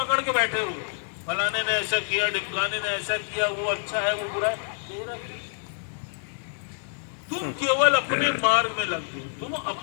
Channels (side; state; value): right; silent; 60 dB below the other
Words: के बैठे हो? फलाने ने ऐसा किया, ढिमकाने ने ऐसा किया, वो अच्छा है वो बुरा है, तेरा तुम केवल अपने मार्ग में लग गए। तुम